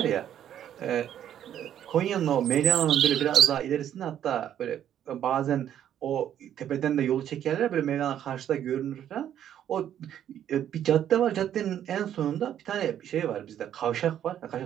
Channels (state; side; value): quieter; left; 10.4 dB